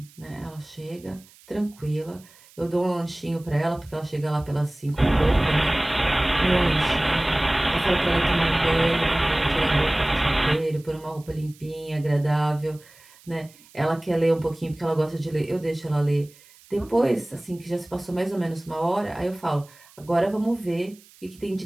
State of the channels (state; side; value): noise; right; hiss, 26 dB below the sound